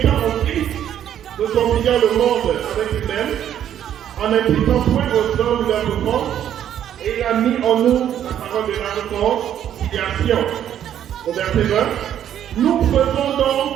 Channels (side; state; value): left; quieter; 10.3 dB